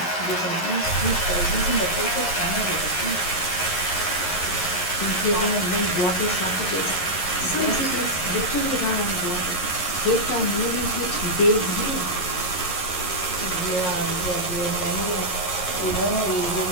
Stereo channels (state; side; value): late; right; 11 ms